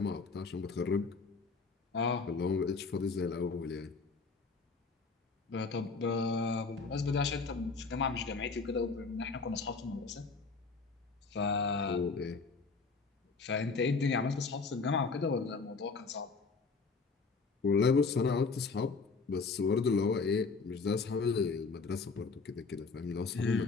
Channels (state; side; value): quieter; right; 4.5 dB